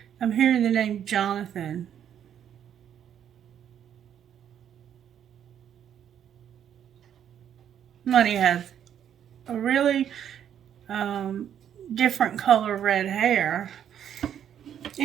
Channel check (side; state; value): left; quieter; 9.5 dB